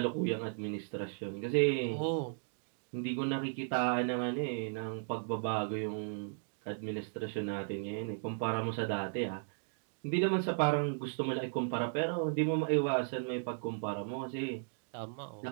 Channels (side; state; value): left; silent; digital silence